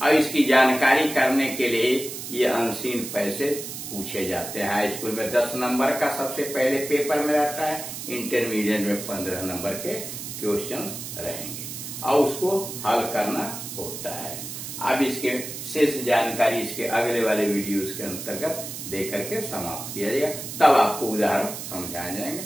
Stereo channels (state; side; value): noise; right; hiss, 8 dB below the sound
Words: और इसकी जानकारी करने के लिए ये अनसीन पैसेज पूछे जाते हैं। हाई स्कूल में 10 नंबर का सबसे पहले पेपर में रहता है, इंटरमीडिएट में 15 नंबर के क्वेश्चंस रहेंगे और उसको हल करना होता है। अब इसके शेष जानकारी इसके अगले वाले वीडियोस के अंतर्गत देकर के समाप्त किया जाएगा, तब आपको उदाहरण समझाए जाएंगे।